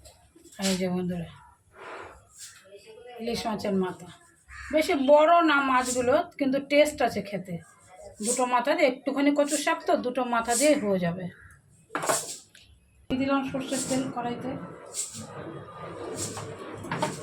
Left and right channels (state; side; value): identical; both; correlation 1.00